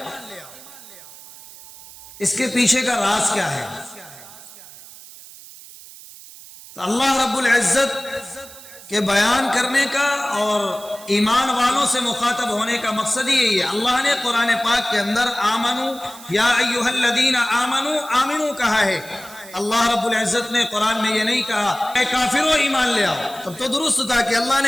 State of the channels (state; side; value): noise; right; hiss, 18 dB below the sound